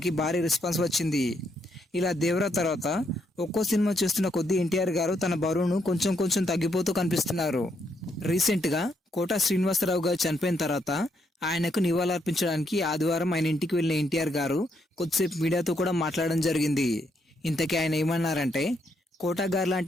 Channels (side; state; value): both; normal; correlation 0.76